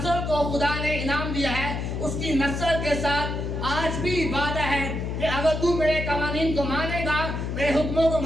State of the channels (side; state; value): left; noise; hum, 3 dB below the sound